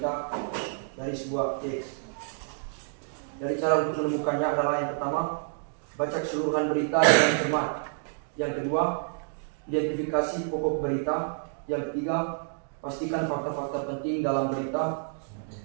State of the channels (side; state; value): left; silent; digital silence